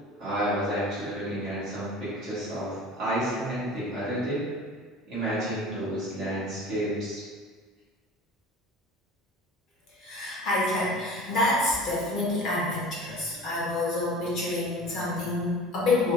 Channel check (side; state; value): both; normal; correlation 0.40